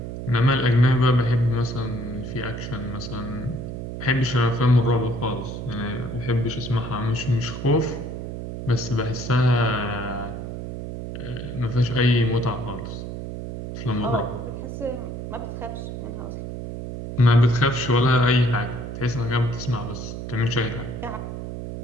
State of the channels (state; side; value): noise; right; hum, 7 dB below the sound